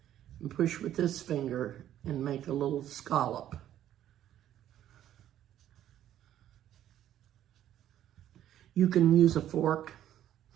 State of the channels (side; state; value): left; quieter; 11.7 dB